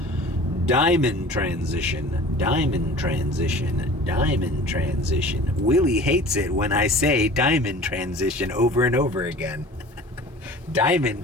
Diamond transition, diamond transition, diamond transition. Willie hates it when I say diamond transition over and over again. Diamond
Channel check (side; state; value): both; normal; correlation 0.43